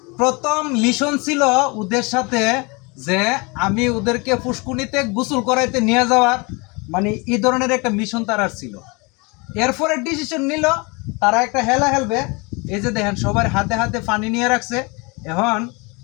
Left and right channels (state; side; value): quieter; right; 28.4 dB